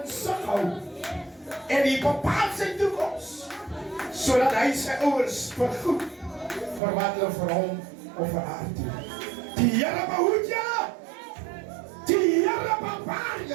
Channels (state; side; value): drops out; left; at 6.8 s